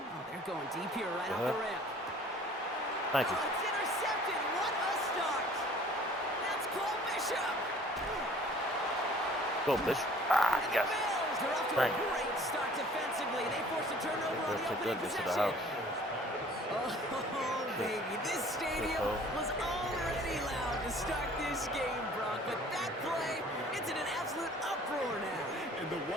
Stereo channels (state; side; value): normal; both; correlation 0.51